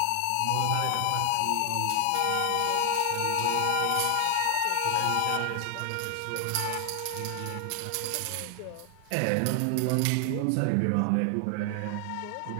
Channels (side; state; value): both; different; correlation 0.00